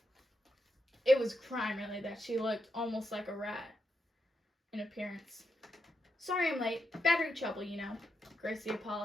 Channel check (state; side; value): normal; both; correlation 0.84